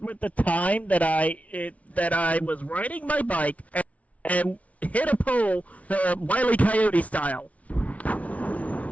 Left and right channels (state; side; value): late; right; 0.067 ms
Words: the time that I was riding my bike and hit a pole, Wile E. Coyote style.